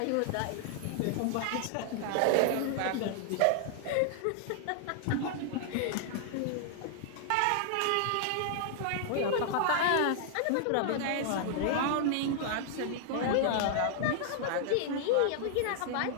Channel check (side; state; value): both; different; correlation 0.00